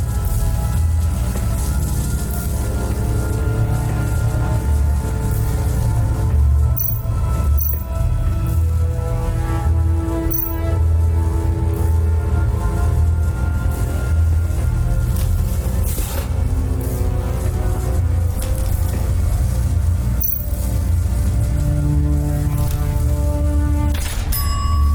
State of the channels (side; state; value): both; identical; correlation 1.00